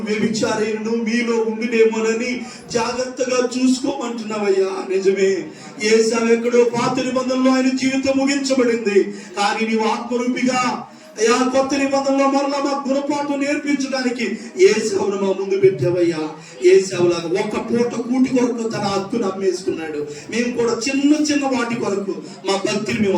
వ్యభిచారైనను మీలో ఉండినేమోనని జాగ్రత్తగా చూసుకోమంటున్నావయ్యా. నిజమే, ఏసావు ఎక్కడో పాత నిబంధనలో ఆయన జీవితం ముగించబడింది. కానీ నీవు ఆత్మరూపిగా అయ్యా కొత్త నిబంధనలో మరలా మా గుణపాఠం నేర్పించడానికి ఏసావును మా ముందు పెట్టావయ్యా. ఏసావులాగా ఒక్క పూట కూటి కొరకు తన హక్కును అమ్మేసుకున్నాడు. మేము కూడా చిన్న వాటి కొరకు మా భక్తిని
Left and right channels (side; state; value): both; identical; correlation 1.00